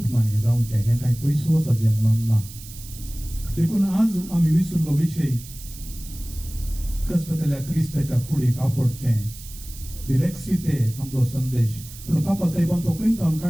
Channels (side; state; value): right; noise; hiss, 16 dB below the sound